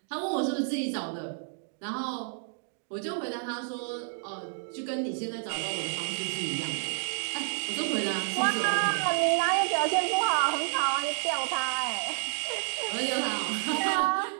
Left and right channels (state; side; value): silent; left; 58 dB below the other